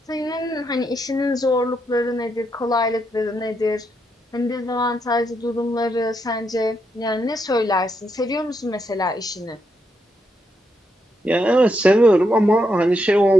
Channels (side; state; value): both; normal; correlation 0.80